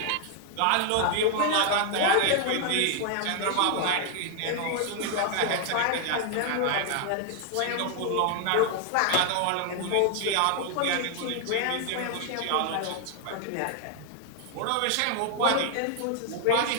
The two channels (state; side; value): different; both; correlation 0.00